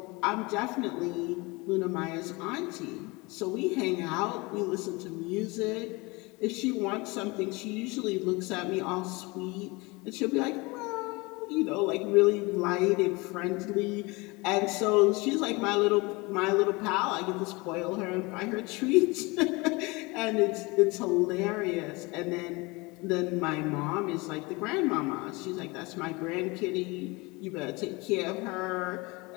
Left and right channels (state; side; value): quieter; right; 25.1 dB